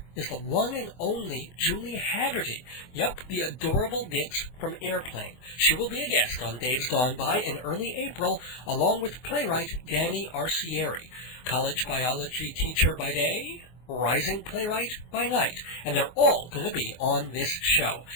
is the one and only Julie Haggerty. Yup, the adorable Nix from Airplane. She will be a guest on Dave's Gone By in early April, along with playwright Danny Arcieri, college biology teacher by day, rising playwright by night. And they're all going to be on this show.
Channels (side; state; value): right; late; 24 ms